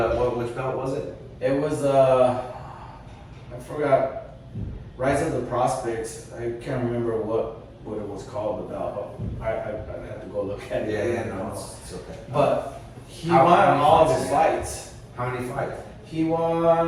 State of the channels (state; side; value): identical; both; correlation 1.00